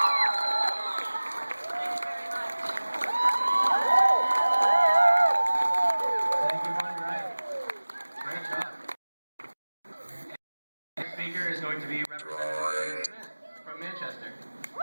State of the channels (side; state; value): both; inverted; correlation -1.00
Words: Thank you, Bonnie Wright. Great job. Next speaker is going to be Representative Smith from Manchester.